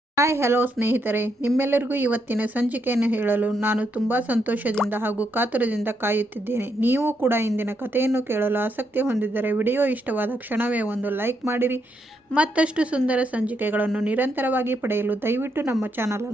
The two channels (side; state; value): both; normal; correlation 0.79